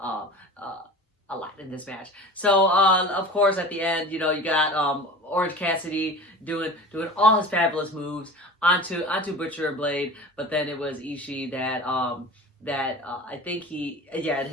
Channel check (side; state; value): both; normal; correlation 0.36